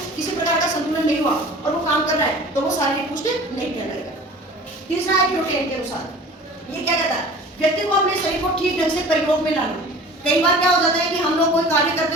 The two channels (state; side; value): normal; both; correlation 0.42